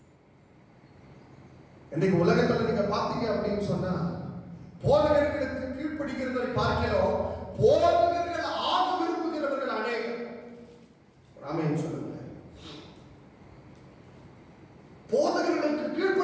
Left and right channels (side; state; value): both; identical; correlation 1.00